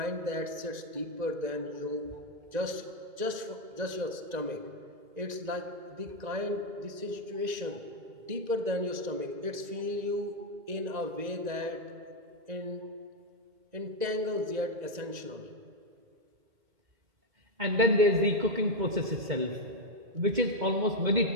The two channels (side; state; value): left; late; 1.9 ms